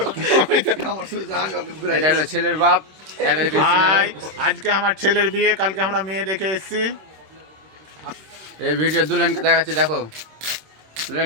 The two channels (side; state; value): left; late; 26 ms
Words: এটা হলো ছেলের বাপ। আজকে আমার ছেলের বিয়ে, কালকে আমরা মেয়ে দেখে এসেছি। এই ভিডিও দুলহানকে দেখাচ্ছি, দেখো দুলহান